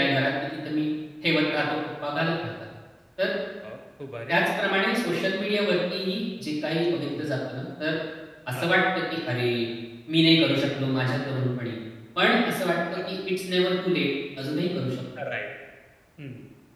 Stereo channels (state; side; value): identical; both; correlation 1.00